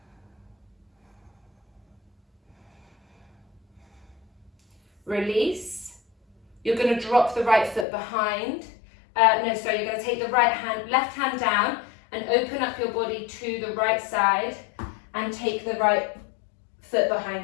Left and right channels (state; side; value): drops out; right; at 7.9 s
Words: Release. You're going to drop the right foot behind. You're going to take the left hand down and open up your body to the right side and take the right foot